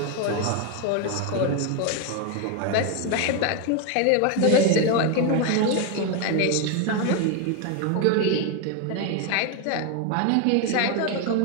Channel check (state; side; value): different; both; correlation 0.01